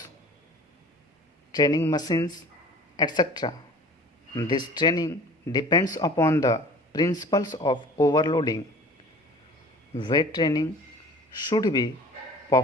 training machines, etc. This training depends upon the principles of overloading. Weight training should be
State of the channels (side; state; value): both; normal; correlation 0.44